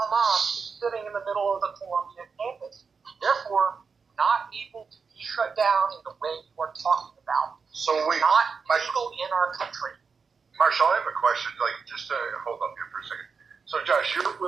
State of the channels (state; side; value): quieter; left; 5.4 dB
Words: is sitting in the middle of the Columbia campus. Therefore, not able to be shut down in the way you are talking about. So wait, not legal in our country. Marshall, I have a question. Just to hold up here for a second. So, Josh, you're